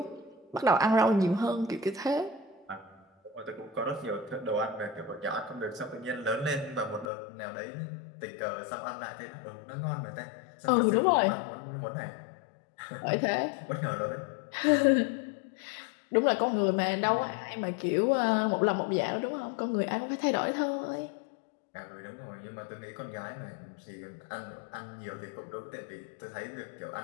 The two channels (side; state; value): right; drops out; at 7.1 s